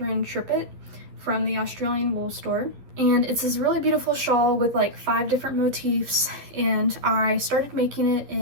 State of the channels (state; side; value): late; left; 11 ms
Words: Trippett from the Australian wool store, and it's this really beautiful shawl with like 5 different motifs, and I started making it